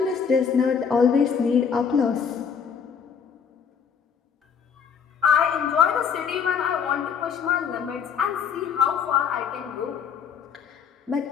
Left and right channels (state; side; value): quieter; right; 6.9 dB